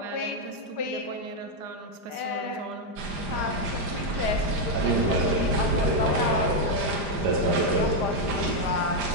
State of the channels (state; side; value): late; left; 5.0 ms